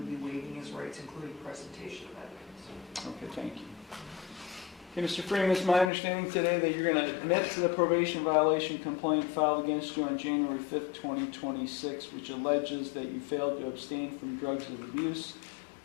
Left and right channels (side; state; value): right; drops out; at 5.9 s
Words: be waiving his rights, including presentation of evidence. Okay, thank you. Okay, Mr. Freeman, it's my understanding today that you're going to admit to the probation violation complaint filed against you on January 5th, 2026, which alleges that you failed to abstain from drugs of abuse,